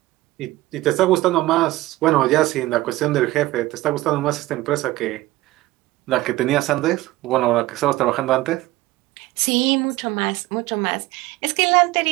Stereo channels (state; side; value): quieter; left; 17.9 dB